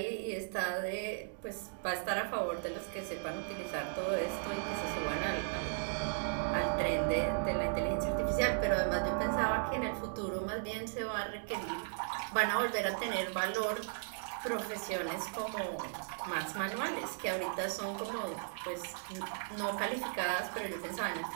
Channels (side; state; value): left; silent; digital silence